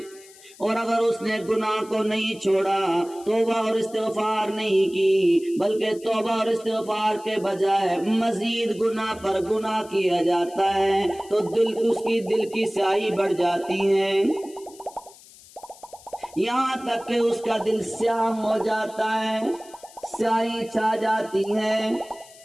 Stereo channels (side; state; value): left; noise; hiss, 22 dB below the sound